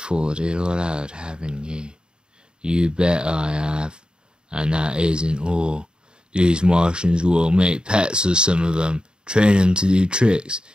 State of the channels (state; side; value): late; left; 0.049 ms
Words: all out, haven't you? You bet I have. And that isn't all. These Martians will make pets of some of them, train them to do tricks.